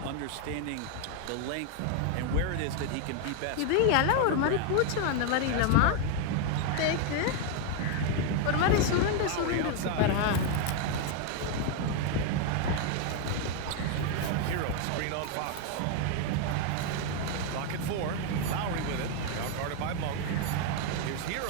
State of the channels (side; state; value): both; different; correlation 0.01